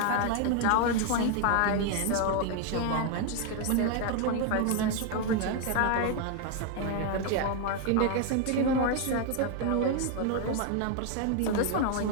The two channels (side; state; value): both; different; correlation 0.01